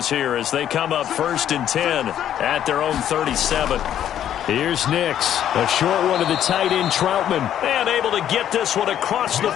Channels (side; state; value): right; quieter; 10.6 dB